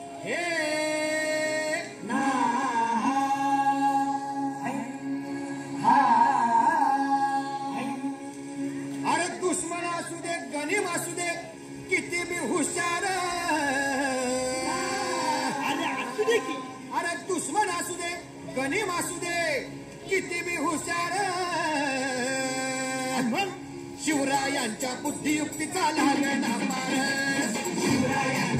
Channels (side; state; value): both; identical; correlation 1.00